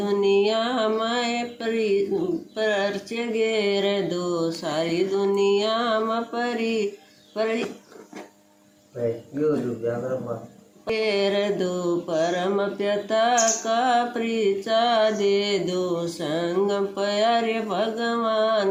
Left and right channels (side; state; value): both; identical; correlation 1.00